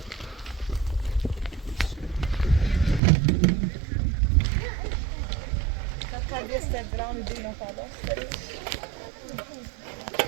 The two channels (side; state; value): left; drops out; at 3.0 s